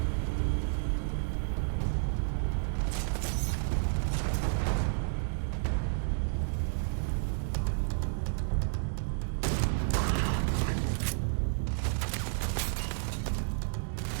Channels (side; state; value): left; silent; digital silence